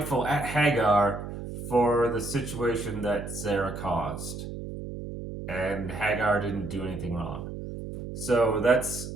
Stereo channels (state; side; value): noise; right; hum, 8 dB below the sound